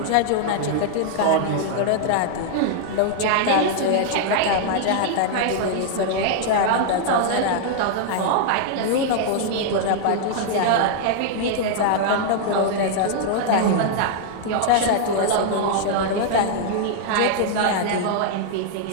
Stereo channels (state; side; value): different; both; correlation -0.01